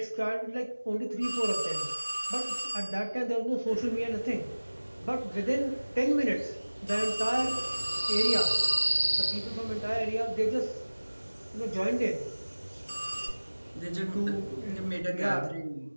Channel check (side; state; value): both; inverted; correlation -1.00